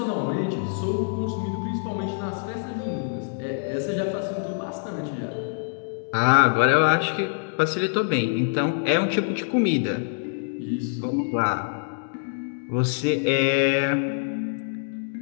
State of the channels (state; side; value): silent; right; digital silence